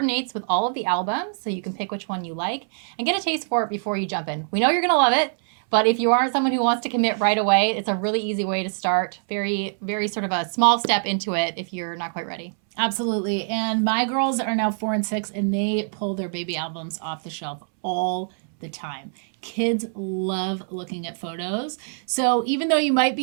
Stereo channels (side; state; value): left; silent; 63 dB below the other